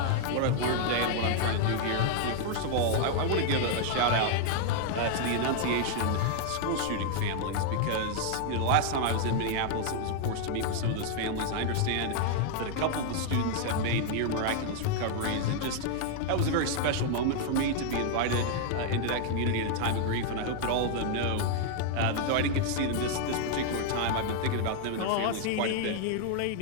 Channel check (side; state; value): both; different; correlation 0.00